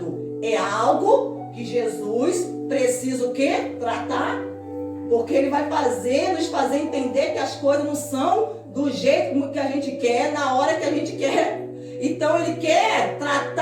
É algo que Jesus precisa o quê? Tratar. Porque Ele vai nos fazer entender que as coisas não são do jeito que a gente quer, na hora que a gente quer. Então Ele quer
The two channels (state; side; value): identical; both; correlation 1.00